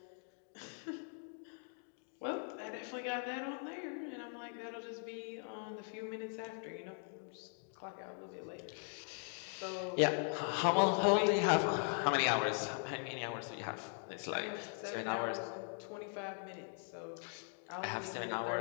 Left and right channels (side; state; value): right; silent; 51 dB below the other